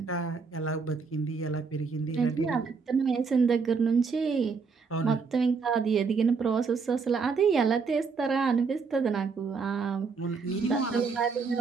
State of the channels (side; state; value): left; quieter; 5.1 dB